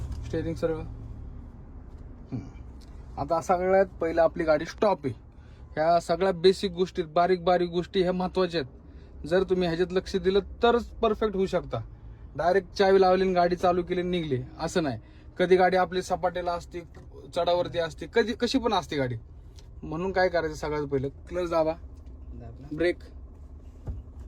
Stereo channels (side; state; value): both; identical; correlation 1.00